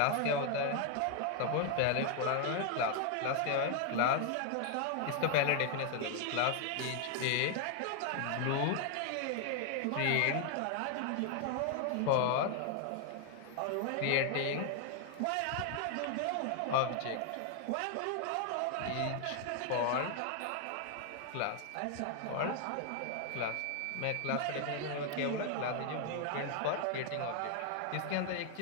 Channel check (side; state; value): both; different; correlation 0.00